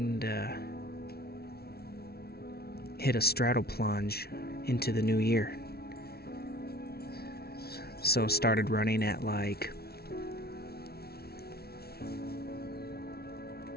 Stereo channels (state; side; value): late; right; 0.45 ms